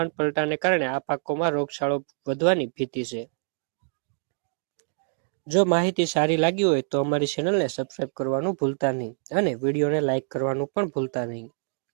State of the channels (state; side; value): silent; left; digital silence